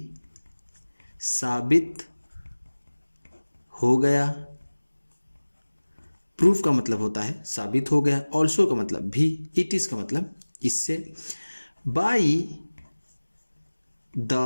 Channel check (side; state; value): both; inverted; correlation -1.00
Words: साबित हो गया। प्रूफ का मतलब होता है साबित हो गया, ऑल्सो का मतलब भी, इट इज का मतलब इससे। बाई द